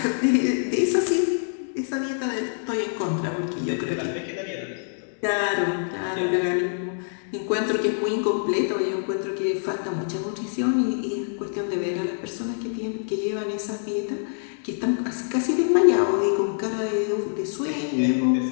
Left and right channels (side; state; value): right; silent; digital silence